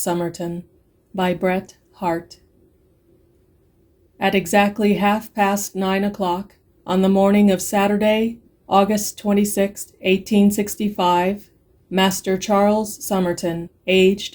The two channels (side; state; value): both; identical; correlation 1.00